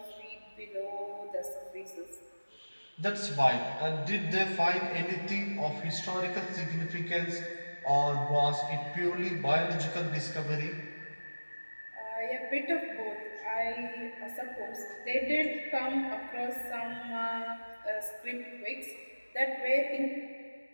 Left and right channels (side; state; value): both; inverted; correlation -1.00